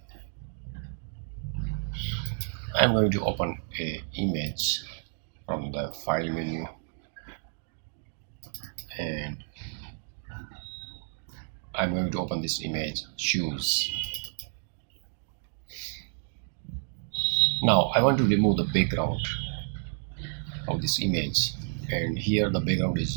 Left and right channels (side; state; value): left; silent; 58 dB below the other